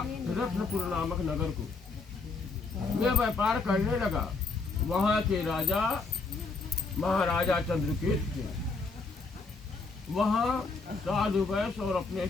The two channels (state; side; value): quieter; right; 4.0 dB